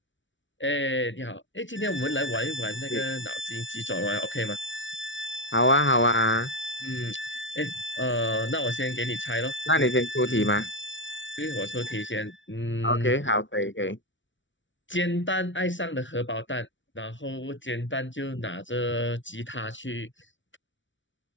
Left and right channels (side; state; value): right; late; 0.55 ms